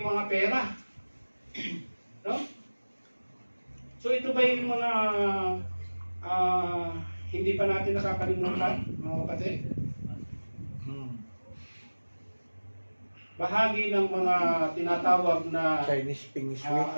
mga pera. No? So ito ba yung mga hindi pa natin nakakalimutan, mga kapatid? Bahagi ng mga tinatawag na Chinese Ping Shui.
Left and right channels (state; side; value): inverted; both; correlation -1.00